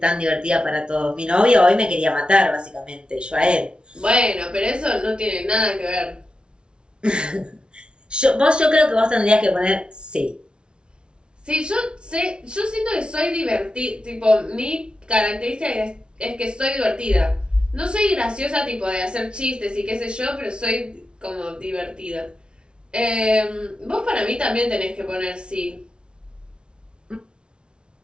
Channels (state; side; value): late; left; 0.056 ms